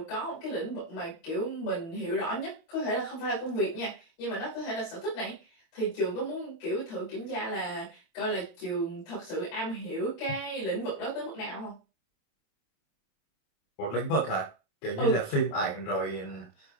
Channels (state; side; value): late; right; 27 ms